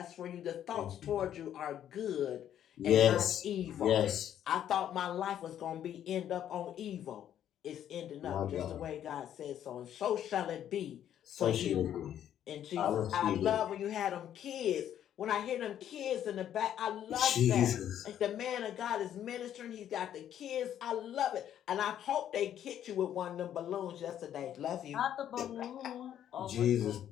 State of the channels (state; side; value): quieter; right; 10.5 dB